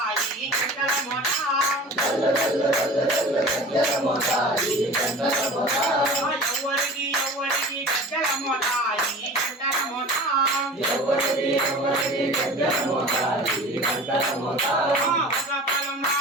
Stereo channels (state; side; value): normal; both; correlation 0.39